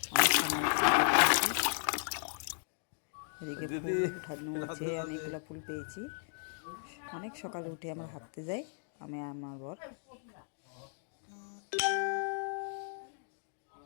অনেক সময় এদিকে ফুল উঠানো হয়েছে, অনেকগুলো ফুল পেয়েছি। অনেক সকালে উঠে আমরা হাঁটতে যাই, আমি আমার বর।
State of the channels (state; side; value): silent; right; digital silence